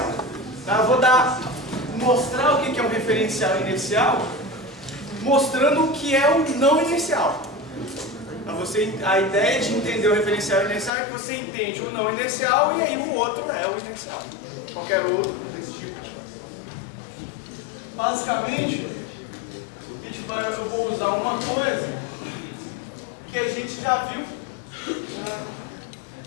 Tá? Eu vou mostrar o que é um referencial inercial, mostrando o que é o não inercial. A ideia de entender o referencial inercial é que você entende o não inercial e aí o outro é o inercial. Qualquer outro desse tipo. Basicamente, eu vou usar uma coisa que a gente já viu.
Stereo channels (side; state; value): right; drops out; at 10.9 s